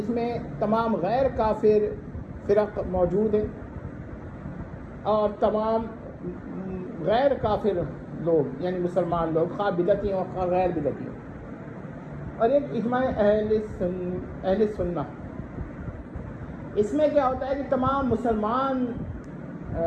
میں تمام غیر کافر فرق موجود ہیں اور تمام غیر کافر لوگ یعنی مسلمان لوگ خواہ بدعتی ہوں خواہ غیر بدعتی ہوں، اور ایک اجماع اہل سنہ۔ اس میں کیا ہوتا ہے کہ تمام مسلمان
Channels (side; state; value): both; identical; correlation 1.00